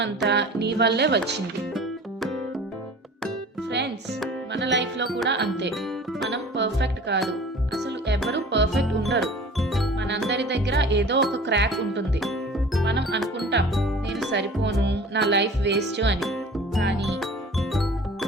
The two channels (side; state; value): both; normal; correlation 0.44